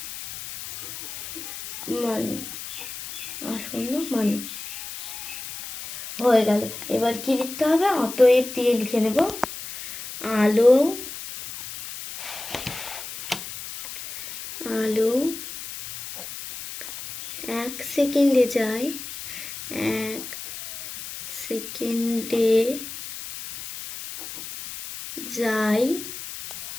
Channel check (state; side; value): noise; left; hiss, 10 dB below the sound